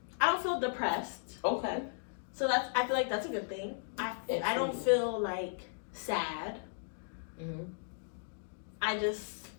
I don't feel depressed. Okay. So that's. I feel like that's a good thing. I don't Absolutely. feel like sad. Mm-hmm. I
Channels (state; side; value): silent; right; digital silence